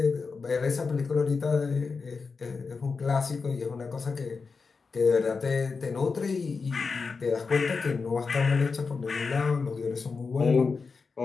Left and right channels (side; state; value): right; quieter; 4.8 dB